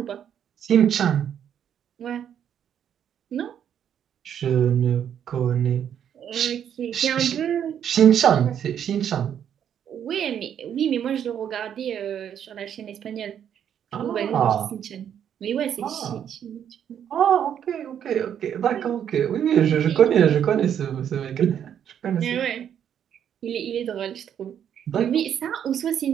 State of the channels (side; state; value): left; quieter; 9.1 dB